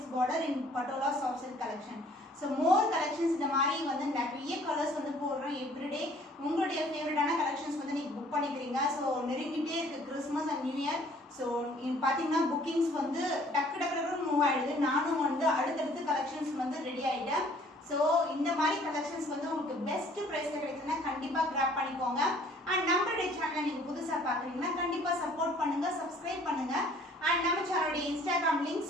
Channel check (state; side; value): normal; both; correlation 0.56